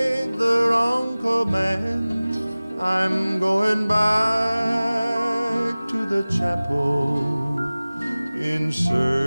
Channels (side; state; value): both; inverted; correlation -0.99